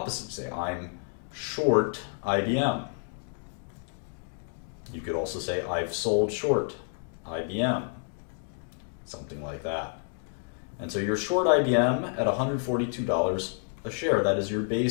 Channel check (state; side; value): silent; right; 58 dB below the other